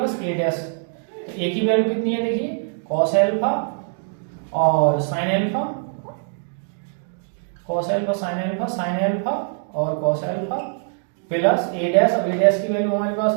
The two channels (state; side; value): silent; left; 64 dB below the other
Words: ए डैश। तो ए की वैल्यू कितनी है देखिए, cos अल्फा और sin alpha, cos alpha sin alpha और cos अल्फा प्लस ए डैश। अब ए डैश की वैल्यू हमारे